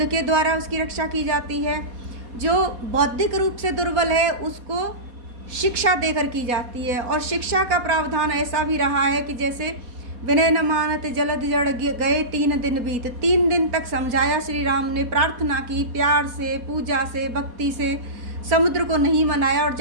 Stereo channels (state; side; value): late; left; 4.2 ms